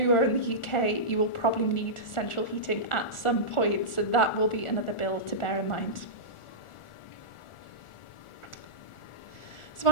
in the UK, you will probably need central heating at some point. So that will be another bill to bear in mind. So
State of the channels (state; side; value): late; right; 1.4 ms